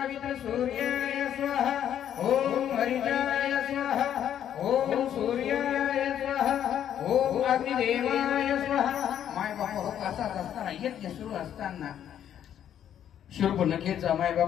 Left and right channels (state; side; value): quieter; right; 10.0 dB